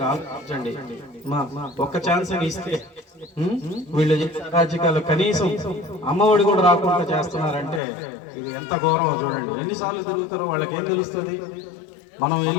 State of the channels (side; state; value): right; drops out; at 7.8 s